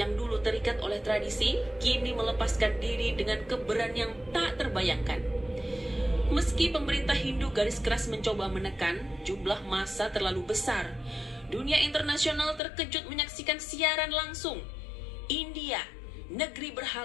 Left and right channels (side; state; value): right; drops out; at 12.6 s